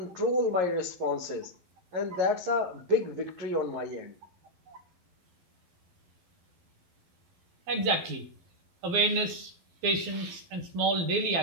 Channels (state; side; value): late; left; 12 ms